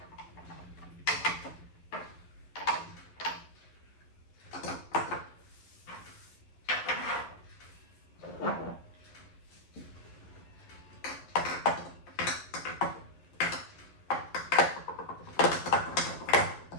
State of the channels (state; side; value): late; right; 11 ms